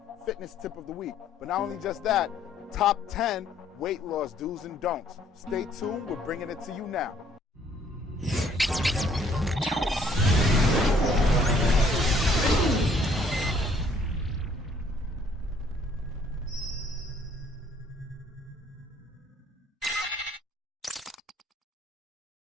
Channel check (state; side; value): normal; both; correlation 0.62